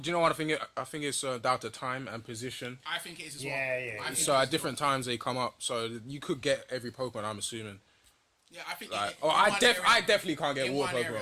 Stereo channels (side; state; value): both; identical; correlation 1.00